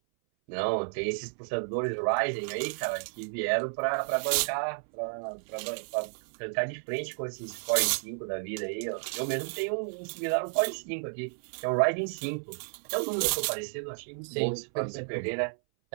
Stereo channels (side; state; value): left; silent; 57 dB below the other